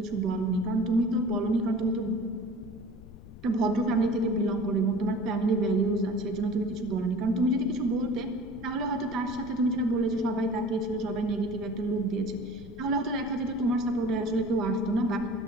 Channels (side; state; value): left; noise; rumble, 17 dB below the sound